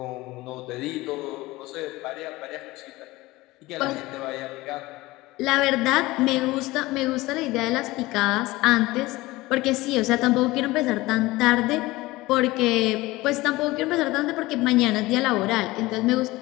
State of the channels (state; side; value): quieter; right; 19.7 dB